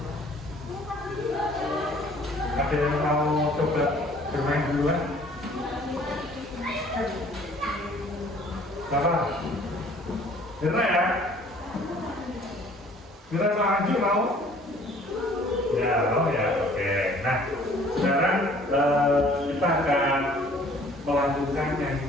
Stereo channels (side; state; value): both; normal; correlation 0.55